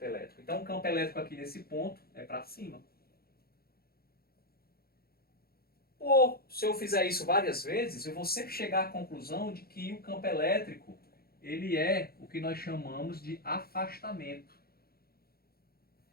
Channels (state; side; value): late; right; 0.44 ms